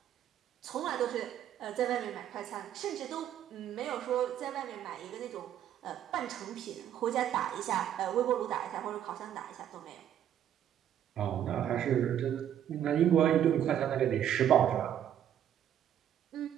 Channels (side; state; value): left; quieter; 10.3 dB